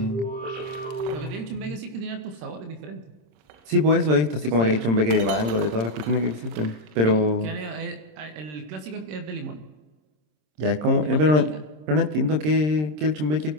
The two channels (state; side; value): late; left; 26 ms